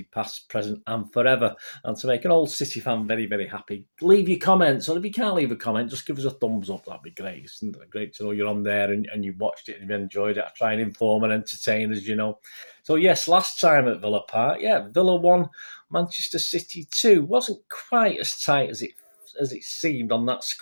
past, present, and forever. And to make an old City fan very, very happy, leave your comments. Or if you can't leave a comment, just give us a thumbs up. That'd be great. Isn't it great to know you're on there and you watched it and you enjoyed it. I try and inform and entertain, as you know. So, yes, last time at Villa Park, Villa 1, Manchester City 2. Wasn't quite as tight as it seemed on that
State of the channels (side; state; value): both; inverted; correlation -1.00